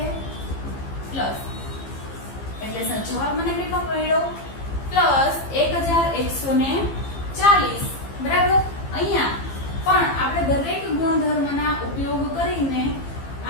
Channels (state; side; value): late; right; 15 ms